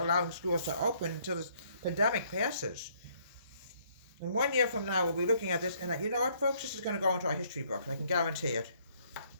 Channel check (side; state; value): both; inverted; correlation -0.66